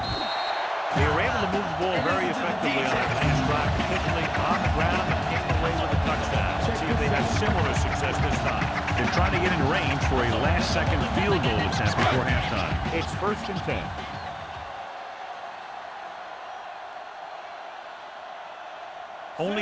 They were able to move the ball very effectively on that last drive, particularly on the ground, and came away with a touchdown. Let's see if they have similar success this time. They're trying to get in range for a last-second field goal attempt before halftime. It's 1st and 10.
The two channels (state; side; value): identical; both; correlation 1.00